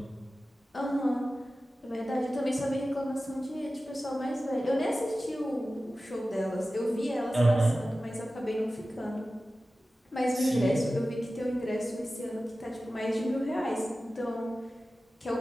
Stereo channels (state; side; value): normal; both; correlation 0.95